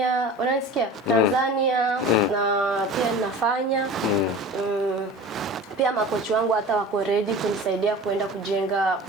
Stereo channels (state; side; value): normal; both; correlation 0.37